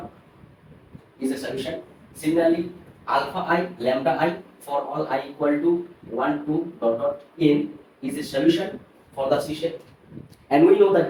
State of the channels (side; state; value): both; identical; correlation 1.00